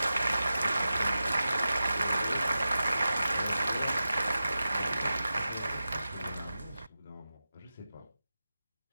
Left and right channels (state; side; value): inverted; both; correlation -0.93